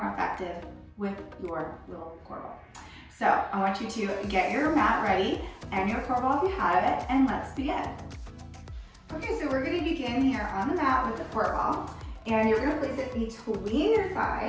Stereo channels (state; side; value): identical; both; correlation 1.00